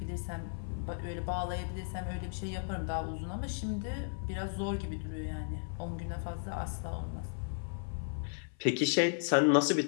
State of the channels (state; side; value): silent; right; 54 dB below the other